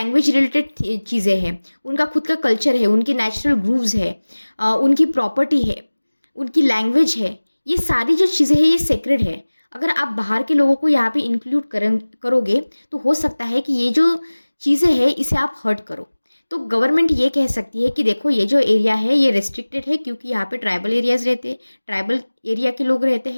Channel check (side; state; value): both; inverted; correlation -1.00